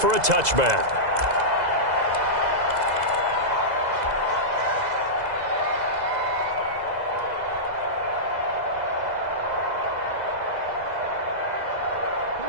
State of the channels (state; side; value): late; left; 2.0 ms